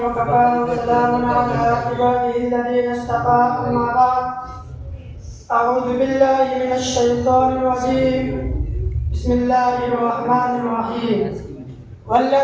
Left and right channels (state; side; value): identical; both; correlation 1.00